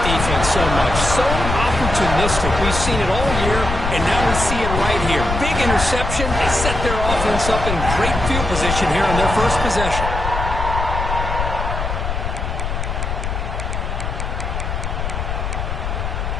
defense so much. So opportunistic. We've seen it all year, and now we see it right here. Big interception. They set their offense up in great field position here on their first possession.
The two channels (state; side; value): noise; left; rumble, 3 dB below the sound